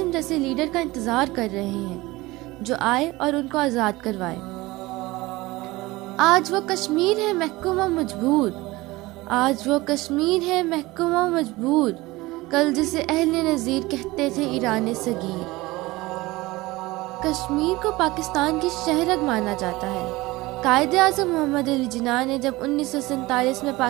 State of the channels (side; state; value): left; quieter; 20.4 dB